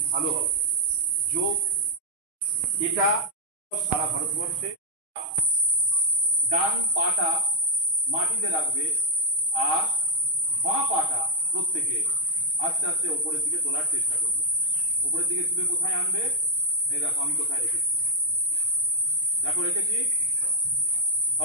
ভালো হবে। যোগ এটা সারা ভারতবর্ষে ডান পাটা মাটিতে রাখবে আর বাঁ পাটা প্রত্যেকে আস্তে আস্তে ওপরের দিকে তোলার চেষ্টা করবে। ওপরের দিকে তুলে কোথায় আনবে? এই দেখো আমি কোথায় রেখেছি, দেখো রেখেছি,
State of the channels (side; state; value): left; late; 6.3 ms